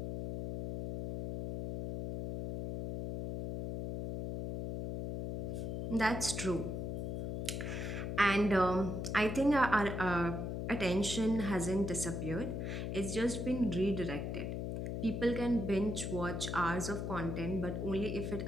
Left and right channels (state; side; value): noise; left; hum, 3 dB below the sound